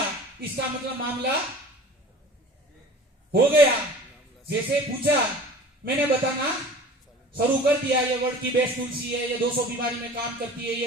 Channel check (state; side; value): normal; both; correlation 0.42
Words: इसका मतलब मामला हो गया। जैसे पूछा मैंने बताना शुरू कर दिया, ये वर्ड की बेस्ट तुलसी है, ये 200 बीमारी में काम करती है, ये